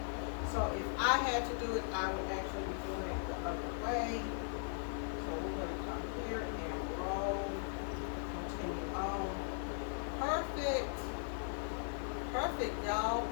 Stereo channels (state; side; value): silent; right; 52 dB below the other